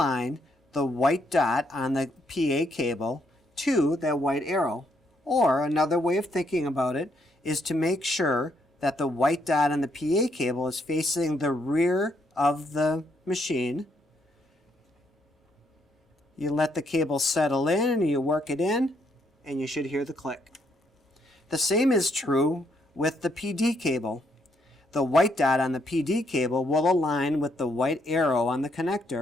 the white dot on the PA cable to that white arrow. Or another way of thinking about it is to make sure that the white dot on the PA cable is facing the rear of the machine. You let the cable settle in and you work it in, and you should hear the click. The same is true with the PD cable. The white dot on the PD cable will align with the white arrow on the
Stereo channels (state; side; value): normal; both; correlation 0.74